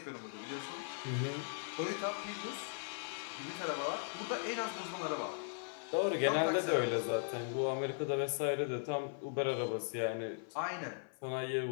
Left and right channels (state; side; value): silent; right; 52 dB below the other